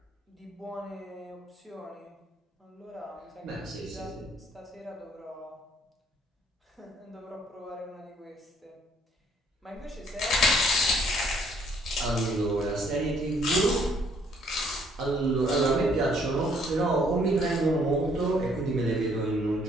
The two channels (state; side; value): normal; both; correlation 0.65